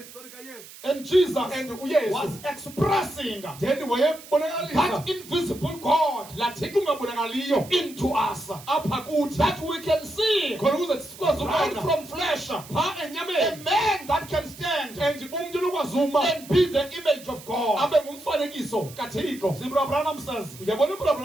kaYesu. and Jesus And uYesu. was expressing Then wayebonakalisa that invisible God laa Thixo ungabonakaliyo into us, apha kuthi. that we can see Khona ukuze sikwazi right ukubona from flesh, phaa a enyameni. man that can stand And umntu lokwazuma and be the image of God. abe ngumfanekiso kaThixo. Zimbra Branham says, Uyabona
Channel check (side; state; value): right; noise; hiss, 18 dB below the sound